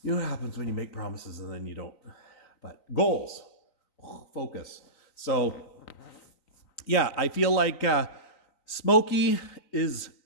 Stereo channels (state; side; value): late; right; 3.9 ms